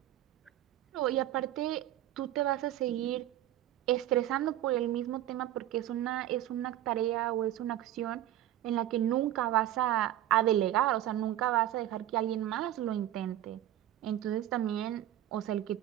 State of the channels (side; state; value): left; quieter; 13.0 dB